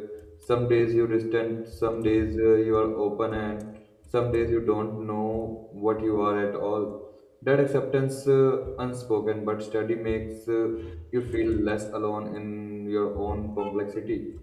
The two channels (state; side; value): identical; both; correlation 1.00